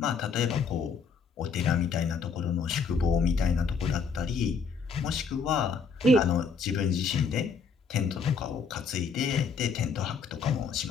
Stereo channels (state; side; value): quieter; right; 5.2 dB